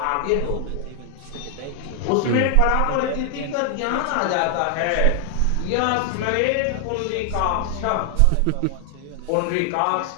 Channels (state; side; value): different; both; correlation 0.00